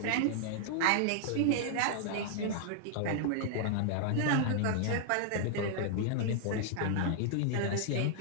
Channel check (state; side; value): different; both; correlation 0.00